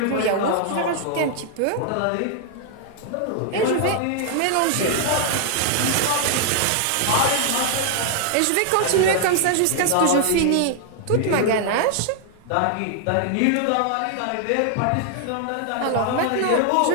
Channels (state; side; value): different; both; correlation 0.00